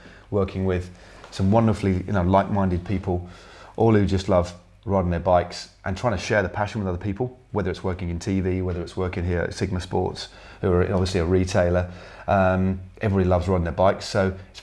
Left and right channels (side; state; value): both; identical; correlation 1.00